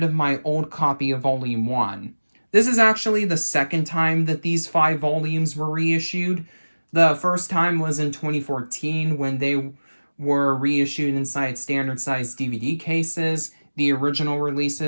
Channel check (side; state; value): both; inverted; correlation -1.00